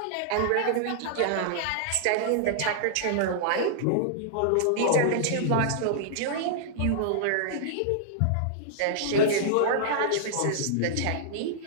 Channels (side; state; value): both; different; correlation -0.01